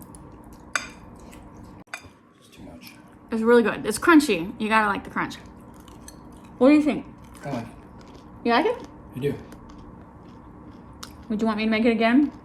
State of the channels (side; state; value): both; identical; correlation 1.00